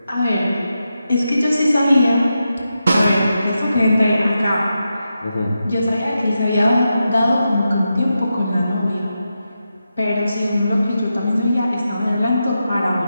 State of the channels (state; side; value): inverted; both; correlation -0.88